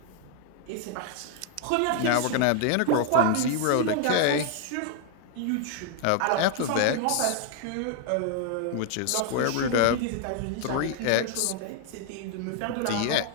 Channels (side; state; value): both; different; correlation 0.00